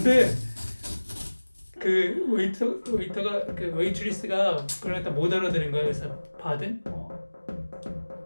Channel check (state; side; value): inverted; both; correlation -1.00